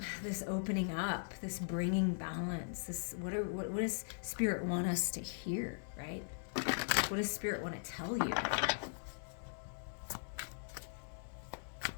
this opening up, this bringing balance, this what does Spirit want us to hear, right? What does Spirit want to tell you?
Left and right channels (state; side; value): silent; right; 51 dB below the other